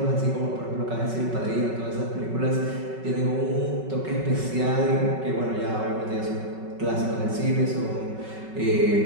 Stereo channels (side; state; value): left; late; 5.3 ms